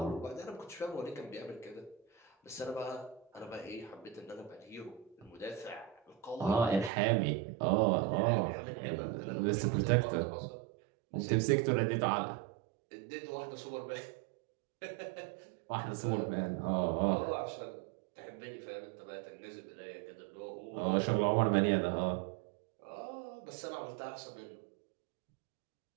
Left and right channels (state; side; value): drops out; left; at 6.9 s